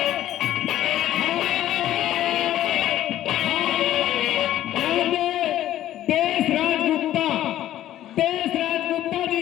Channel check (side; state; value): right; quieter; 12.9 dB